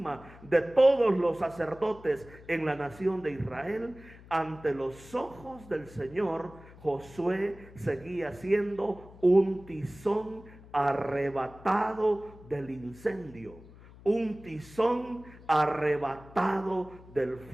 de todos los sacerdotes en la nación de Israel, ante los ojos del Señor, Josué seguía siendo un tizón arrebatado del incendio, un tizón arrebatado del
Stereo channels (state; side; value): noise; left; hum, 20 dB below the sound